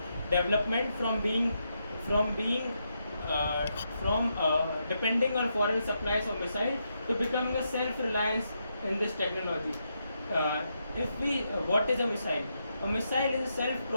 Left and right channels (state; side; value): inverted; both; correlation -0.82